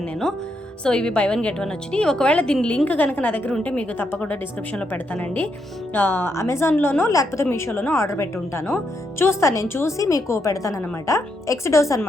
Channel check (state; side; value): normal; both; correlation 0.79